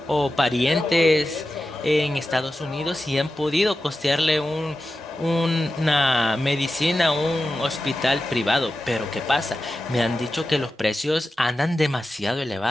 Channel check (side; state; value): both; normal; correlation 0.92